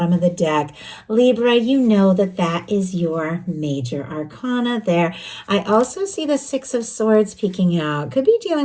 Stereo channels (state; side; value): identical; both; correlation 1.00